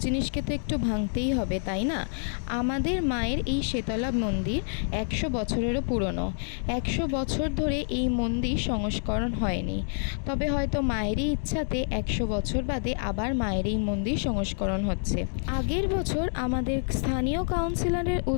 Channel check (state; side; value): silent; right; 60 dB below the other